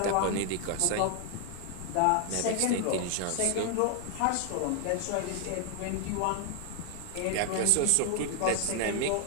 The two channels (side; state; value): both; different; correlation 0.00